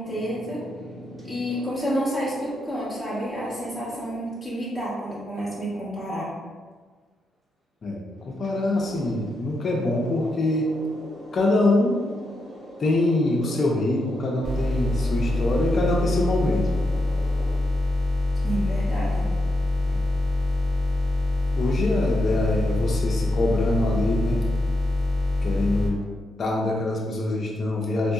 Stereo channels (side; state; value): both; normal; correlation 0.84